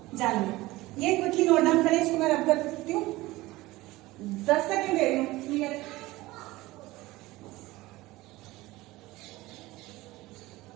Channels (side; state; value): left; quieter; 19.2 dB